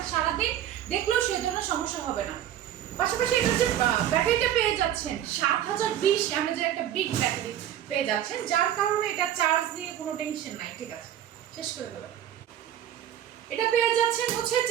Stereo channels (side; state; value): left; quieter; 11.1 dB